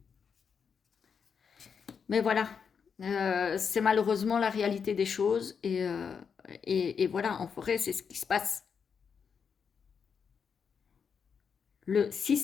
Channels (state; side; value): quieter; right; 6.5 dB